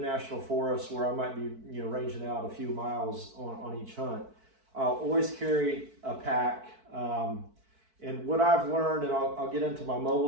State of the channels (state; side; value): late; left; 4.5 ms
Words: Forest where I might be ranging out a few miles on each hunt, I'll always carry a pack. And what I've learned, and I'll get into my